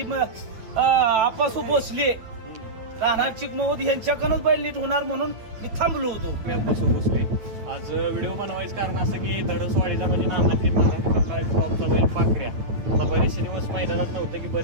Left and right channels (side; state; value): left; late; 9.2 ms